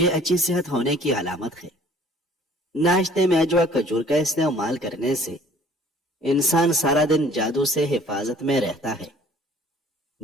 अच्छी सेहत होने की अलामत है। नाश्ते में अजवा खजूर का इस्तेमाल करने से इंसान सारा दिन जादू से हिफाजत में रहता है।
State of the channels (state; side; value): normal; both; correlation 0.54